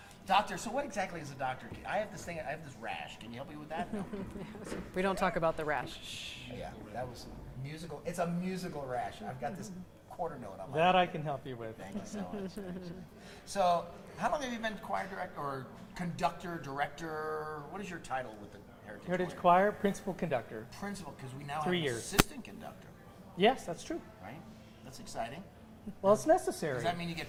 Doctor, so what exactly is a doctor? I have this rash. Can you help me with that? No. We don't talk about the rash. Shh. Yeah, that was musical. It's a musical rash. I've got this quarter note on my That I can help you with. Thank you so much. So, how long have you been choir director or conductor, director? What is your title with the Heritage Choir, principal conductor. Principal, because we now 3 have years. assistant conductor, Yes, that's true. right? That's exciting. Well, it's necessary. Does that mean you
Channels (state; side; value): identical; both; correlation 1.00